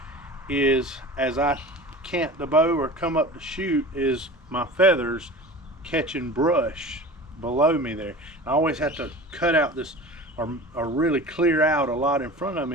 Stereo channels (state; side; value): normal; both; correlation 0.36